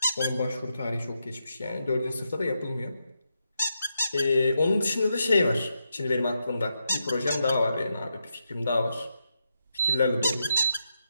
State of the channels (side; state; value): both; inverted; correlation -0.84